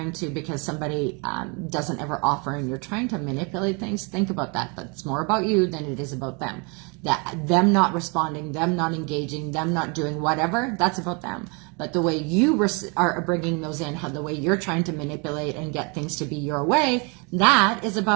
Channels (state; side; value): quieter; left; 32.6 dB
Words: to, because somebody doesn't ever offer and you're trying to manipulate things. Think about that. That's more about you than it is about them. Them not responding, them not engaging, them not doing whatever, that's about them. But the way you are bringing those in, the way you're trying to manipulate and get things to be your way, that is